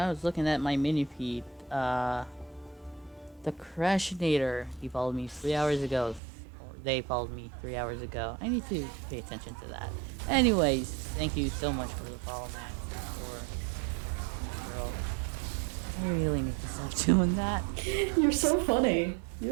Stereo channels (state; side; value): drops out; left; at 6.2 s